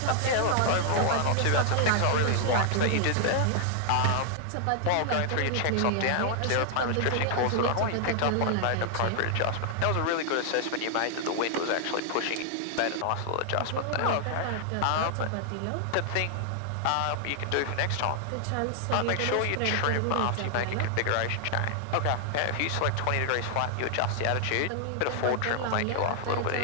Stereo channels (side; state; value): both; different; correlation 0.00